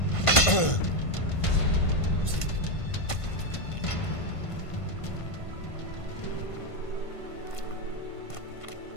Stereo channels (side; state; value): right; late; 1.5 ms